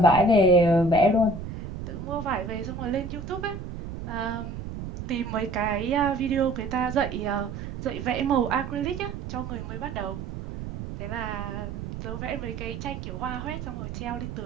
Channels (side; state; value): right; noise; rumble, 8 dB below the sound